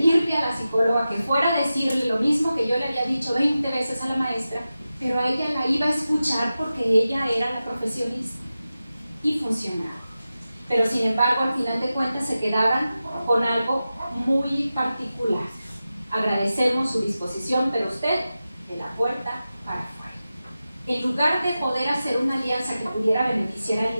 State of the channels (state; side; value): inverted; both; correlation -0.93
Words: a la psicóloga que fuera a decirle lo mismo que yo le había dicho 20 veces a la maestra, pero a ella la iba a escuchar porque ella era la profesionista y funcionaba. Pero sin embargo, al final de cuentas se quedaban con algo muy particular. Agradecemos su disposición, pero usted de la puerta para afuera. En lugar de poder hacer una alianza que pudiera beneficiar al